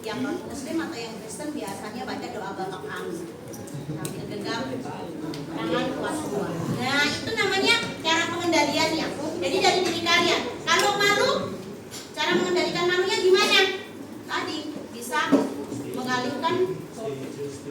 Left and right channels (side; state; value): both; identical; correlation 1.00